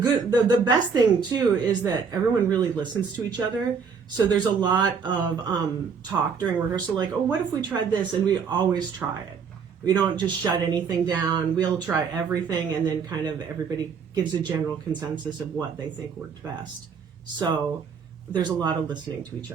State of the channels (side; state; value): left; quieter; 6.0 dB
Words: best thing too is that everyone really listens to each other. So there's a lot of talk during rehearsal, like, oh, what if we tried this? And we always try it. We don't just shut anything down. We'll try everything, and then kind of everybody gives a general consensus of what they think worked best. So there's a lot of listening to each